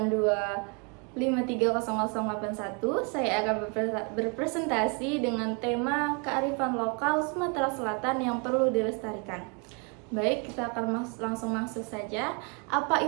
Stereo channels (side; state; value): left; quieter; 34.0 dB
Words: Saya akan berpresentasi dengan tema kearifan lokal Sumatera Selatan yang perlu dilestarikan. Baik, kita akan langsung masuk saja. Apa